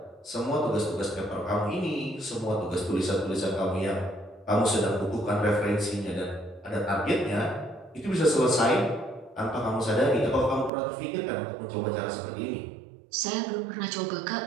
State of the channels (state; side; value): drops out; left; at 10.7 s